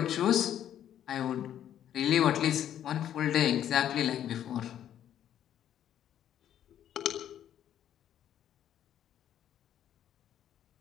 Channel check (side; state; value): right; quieter; 10.6 dB